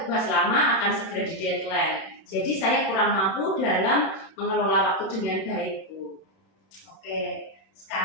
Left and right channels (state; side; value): late; right; 31 ms